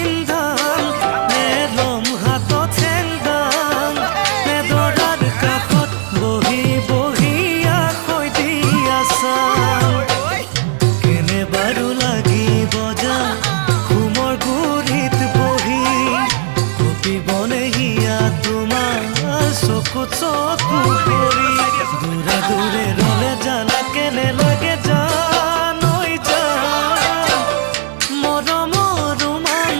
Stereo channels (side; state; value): left; silent; 69 dB below the other